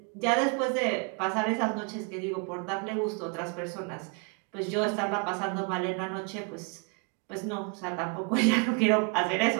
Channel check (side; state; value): left; quieter; 36.8 dB